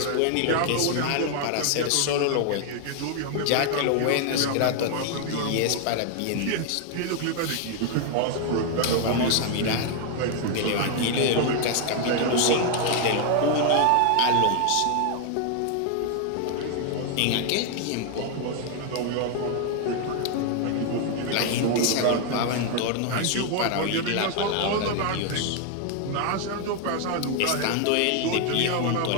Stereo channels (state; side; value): different; both; correlation 0.00